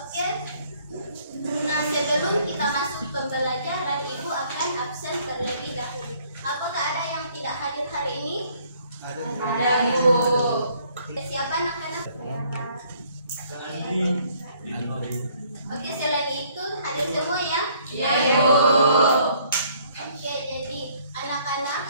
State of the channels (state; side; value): inverted; both; correlation -0.62